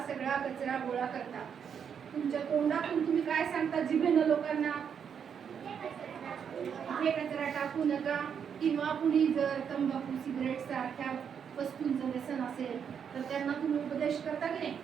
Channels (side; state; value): left; quieter; 7.5 dB